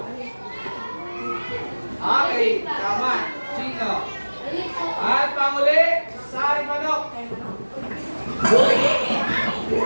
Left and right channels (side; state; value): both; inverted; correlation -1.00